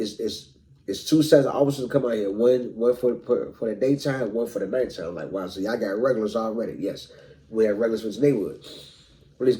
2 sets of officers come out here. One for the daytime, one for the nighttime. I'm like, wow, so y'all got regulars already. Yes, we have regulars for this neighborhood. Police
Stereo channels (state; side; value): identical; both; correlation 1.00